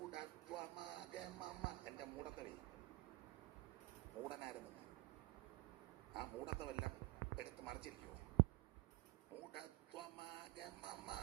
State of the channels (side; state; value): left; quieter; 21.3 dB